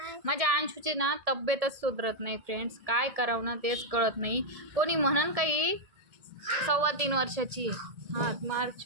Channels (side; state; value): left; late; 1.7 ms